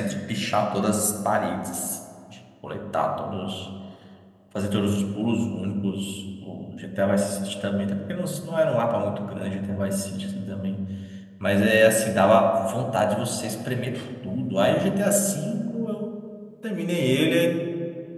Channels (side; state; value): both; identical; correlation 1.00